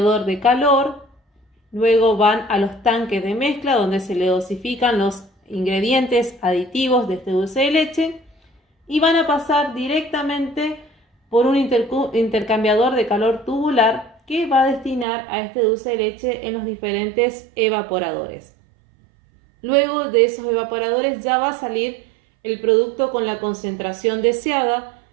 de calor, luego van a los tanques de mezcla donde se le dosifican los ingredientes aditivos de este dulce de leche, y van a pasar directamente por un intercambiador de calor tubular que va a destinar a este dulce de leche en los diferentes evaporadores. Luego de esos evaporadores ya va a salir el producto con la concentración deseada,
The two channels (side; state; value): left; drops out; at 15.1 s